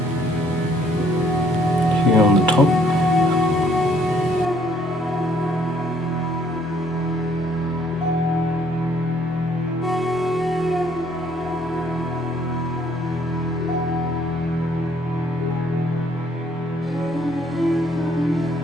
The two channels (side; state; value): both; normal; correlation 0.64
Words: Here on the top.